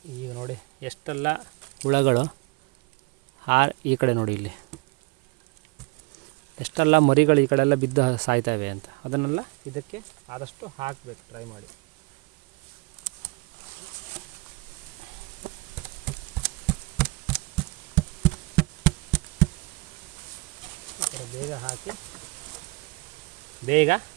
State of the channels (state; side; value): quieter; left; 25.8 dB